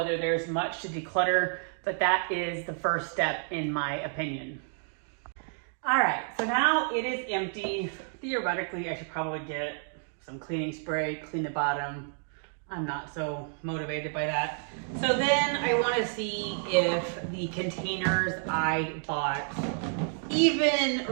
there's much to declutter, but that is the first step in my opinion. All right, so now it is empty. Theoretically, I should probably get some cleaning spray, clean the bottom. I'm not so motivated by that. So then I want to see if the containers I bought even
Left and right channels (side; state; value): left; silent; 58 dB below the other